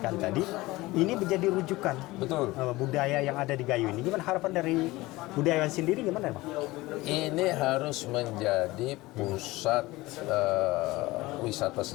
tadi, ini menjadi rujukan. Betul. Budaya yang ada di Gayo ini. Gimana harapan dari budayawan sendiri, gimana Bang? Ini harus menjadi pusat wisata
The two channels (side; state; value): right; quieter; 19.8 dB